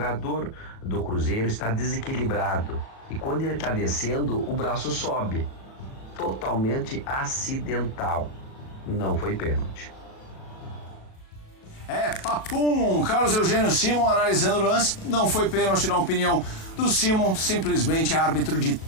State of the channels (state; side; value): late; right; 37 ms